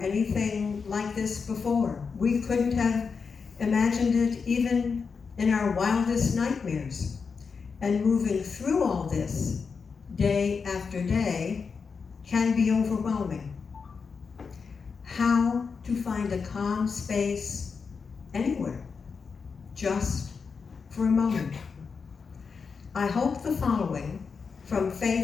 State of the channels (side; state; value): right; quieter; 5.4 dB